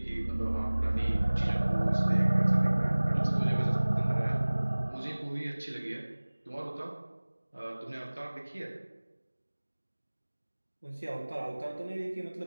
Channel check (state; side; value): inverted; both; correlation -1.00